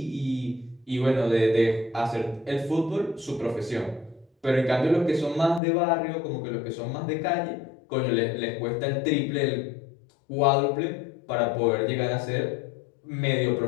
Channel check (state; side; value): drops out; right; at 5.6 s